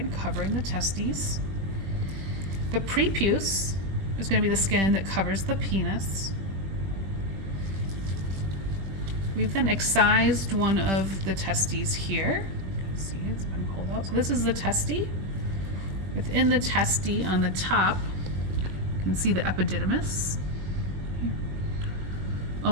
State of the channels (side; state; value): left; late; 20 ms